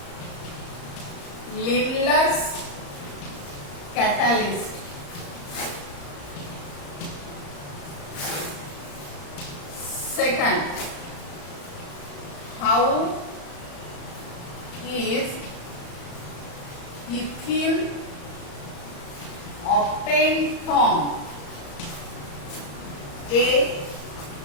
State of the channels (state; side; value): late; right; 34 ms